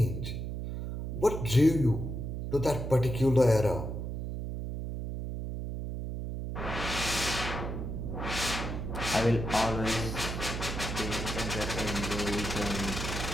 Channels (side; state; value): right; noise; hum, 4 dB below the sound